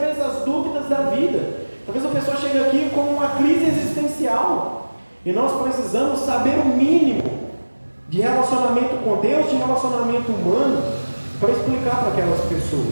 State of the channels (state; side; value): inverted; both; correlation -1.00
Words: às dúvidas da vida. Talvez a pessoa chegue aqui com uma crise existencial e nós precisamos saber o mínimo de relacionamento com Deus, de relacionamento humano, para explicar para aquelas